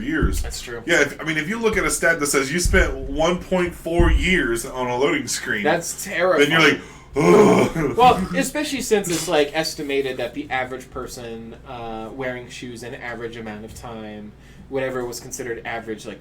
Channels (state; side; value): identical; both; correlation 1.00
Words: That's true. Yeah, if you look at a stat that says you spent 1.4 years on a loading screen, that's terrifying. Then you're like, ugh. Well, especially since it's estimated that the average person wearing shoes an average amount of time, whatever was considered average